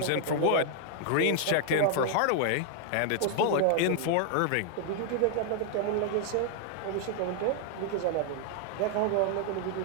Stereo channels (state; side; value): different; both; correlation 0.00